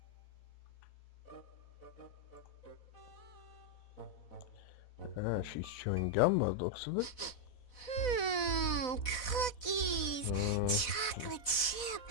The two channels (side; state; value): right; late; 4.1 ms